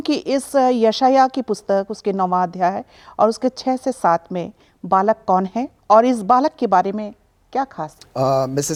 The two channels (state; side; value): identical; both; correlation 1.00